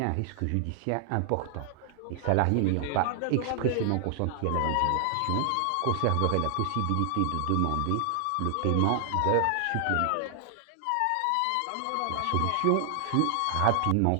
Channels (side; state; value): both; different; correlation 0.00